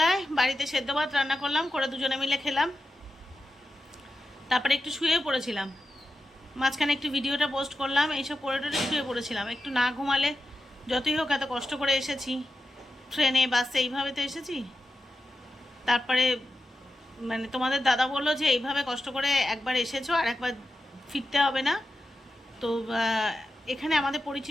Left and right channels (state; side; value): normal; both; correlation 0.91